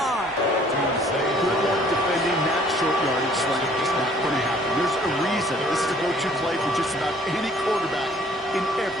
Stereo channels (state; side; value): normal; both; correlation 0.57